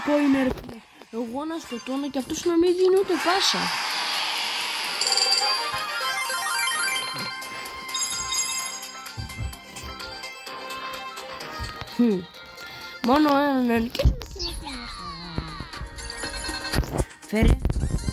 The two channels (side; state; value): both; identical; correlation 1.00